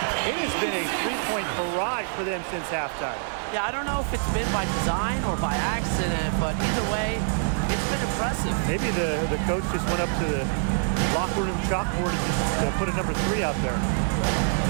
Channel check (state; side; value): silent; left; digital silence